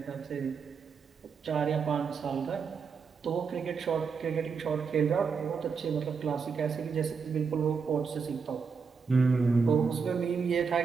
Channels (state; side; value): quieter; left; 5.6 dB